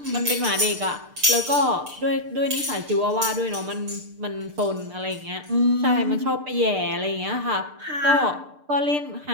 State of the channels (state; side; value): late; left; 6.7 ms